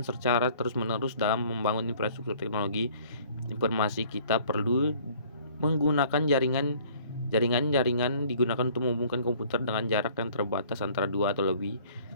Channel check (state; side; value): inverted; both; correlation -0.55